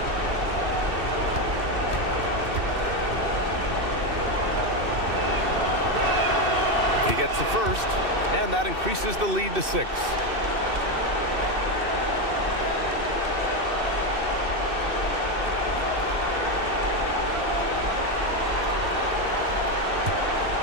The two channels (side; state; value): left; late; 2.6 ms